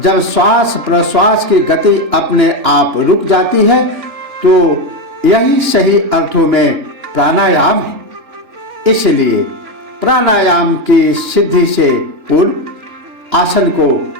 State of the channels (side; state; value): left; late; 2.9 ms